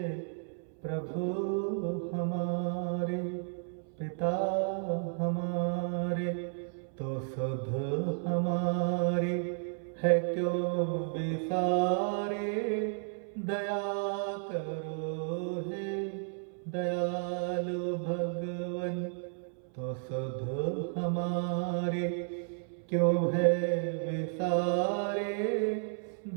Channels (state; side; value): silent; left; 56 dB below the other